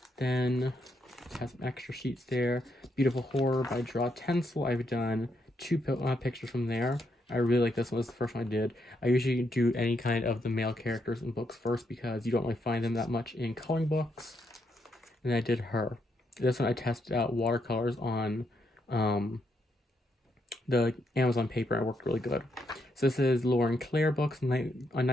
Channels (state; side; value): normal; both; correlation 0.78